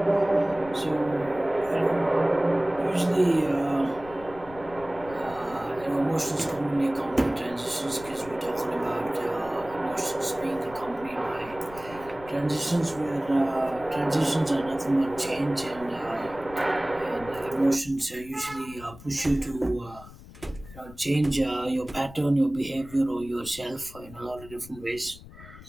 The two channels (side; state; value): left; noise; rumble, 18 dB below the sound